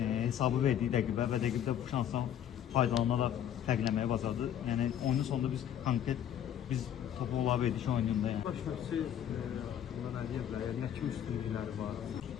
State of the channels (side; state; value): right; quieter; 10.0 dB